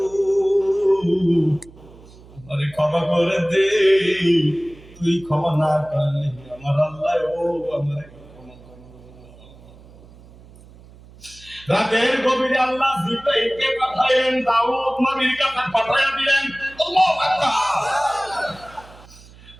আমারে ক্ষমা করে দে তুই ক্ষমা না করলে আমার আল্লাহ ও আমার রাতের গভীরে আল্লাহ জিব্রাইলকে পাঠালেন দাউদ নবীর কাছে পাঠায়া দিলেন আল্লাহু আকবার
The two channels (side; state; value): right; noise; hum, 22 dB below the sound